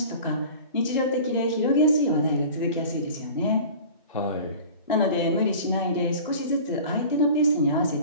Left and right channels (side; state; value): both; inverted; correlation -0.40